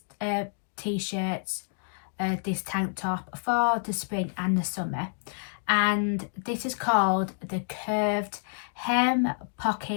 t-shirts, this tank top for the spring and the summer, and this is called the Curved Hem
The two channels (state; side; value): silent; right; digital silence